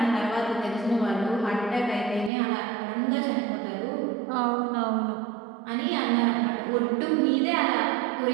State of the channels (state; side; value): drops out; left; at 2.3 s